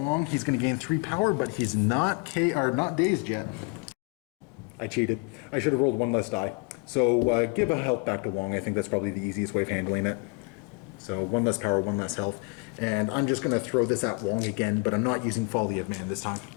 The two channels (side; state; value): right; quieter; 31.6 dB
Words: He's going to gain 3 power, but he's not not dazed yet. I cheated. I should have rolled 1 less die. So give a health back to Wong. I think that's probably the easiest way of handling it. So 1 less power, 1 less health. And I'm just going to throw this at Wong again, but I'm not using Folly of Man this time.